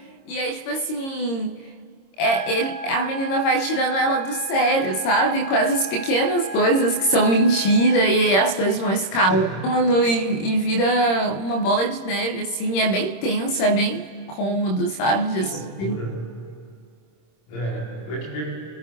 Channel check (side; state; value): right; late; 26 ms